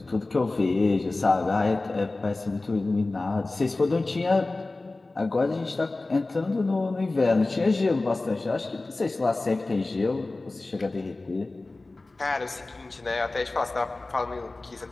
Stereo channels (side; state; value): right; quieter; 3.2 dB